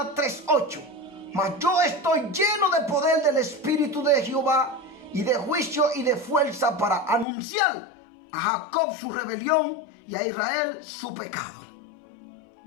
3:8. Mas yo estoy lleno de poder del Espíritu de Jehová, y de juicio y de fuerza, para anunciar a Jacob su rebelión y a Israel su pecado.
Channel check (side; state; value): right; drops out; at 7.2 s